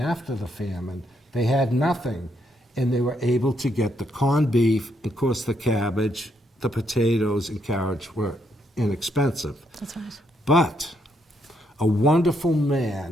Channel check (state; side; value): normal; both; correlation 0.76